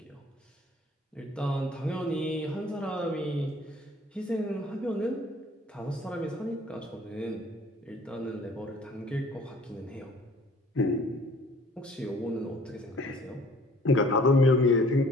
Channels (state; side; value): normal; both; correlation 0.54